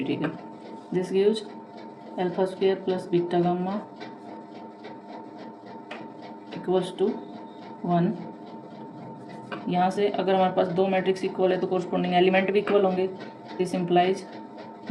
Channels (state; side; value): identical; both; correlation 1.00